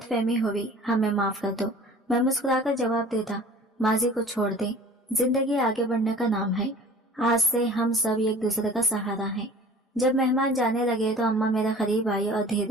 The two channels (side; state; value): both; normal; correlation 0.45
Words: फहमी हुई, हमें माफ कर दो। मैं मुस्कुराकर जवाब देता, माजी को छोड़ दे, जिंदगी आगे बढ़ने का नाम है, आज से हम सब एक दूसरे का सहारा हैं। जब मेहमान जाने लगे तो अम्मा मेरे करीब आई और